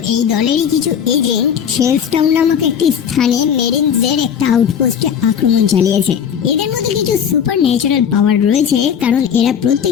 এই দলেরই কিছু এজেন্ট শেলস্টাউন নামক একটি স্থানে মেরিনসদের একটা আউটপোস্টে আক্রমণ চালিয়েছে। এদের মধ্যে কিছু সুপার ন্যাচারাল পাওয়ার রয়েছে, কারণ এরা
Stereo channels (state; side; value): quieter; right; 8.2 dB